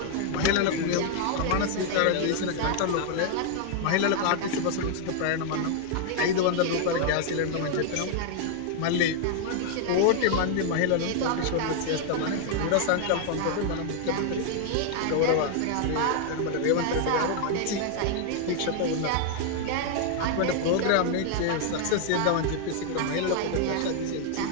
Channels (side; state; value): both; different; correlation 0.00